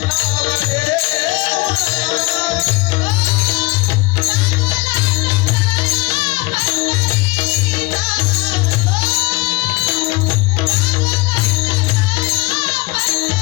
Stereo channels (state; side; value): quieter; right; 23.2 dB